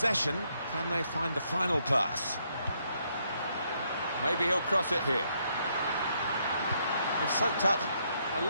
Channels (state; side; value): inverted; both; correlation -0.74